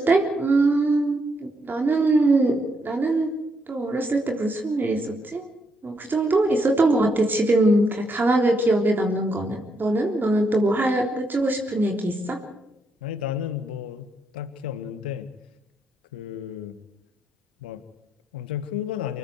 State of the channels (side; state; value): both; normal; correlation 0.78